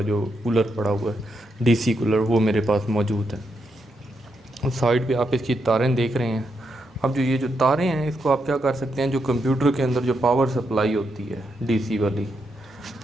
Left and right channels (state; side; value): normal; both; correlation 0.82